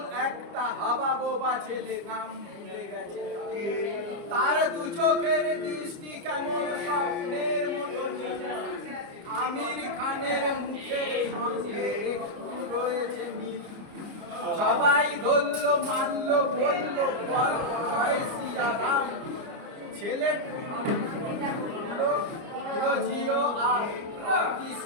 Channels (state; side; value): late; left; 29 ms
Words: একটা হাবা বোবা ছেলে নাম ভুলে গেছে তার। দু চোখের দৃষ্টি কেমন স্বপ্নের মতো, আমির খানের মুখের সঙ্গে একটু রয়েছে মিল। সবাই ধরল মানল বলল বল জয় সিয়ারাম, ছেলেটা জিও আর